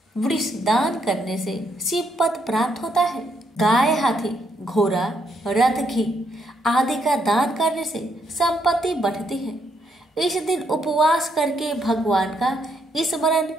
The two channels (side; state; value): both; normal; correlation 0.75